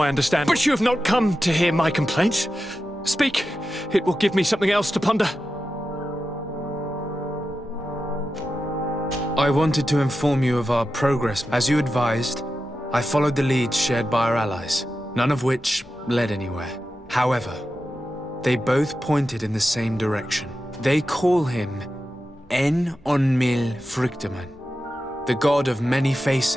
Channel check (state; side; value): normal; both; correlation 0.91